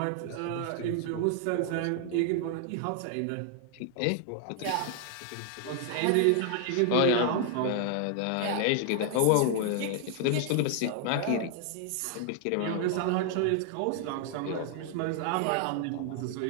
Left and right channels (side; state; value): both; different; correlation 0.00